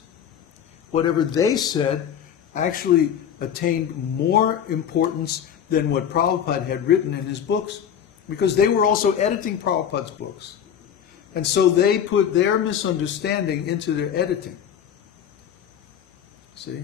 whatever they said actually attained more importance than what Prabhupada had written in his books, because they were also editing Prabhupada's books. And so they put their misunderstanding into their editing. See?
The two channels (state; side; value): quieter; right; 8.8 dB